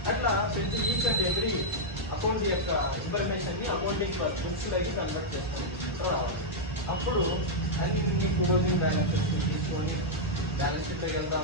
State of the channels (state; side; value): normal; both; correlation -0.05